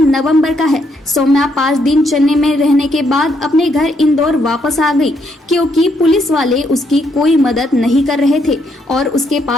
का है। सौम्या 5 दिन चेन्नई में रहने के बाद अपने घर इंदौर वापस आ गई, क्योंकि पुलिस वाले उसकी कोई मदद नहीं कर रहे थे और उसके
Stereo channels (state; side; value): normal; both; correlation 0.74